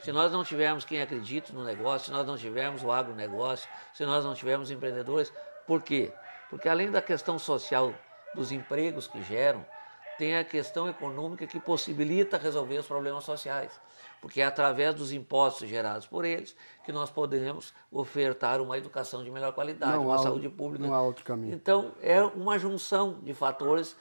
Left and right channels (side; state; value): both; inverted; correlation -1.00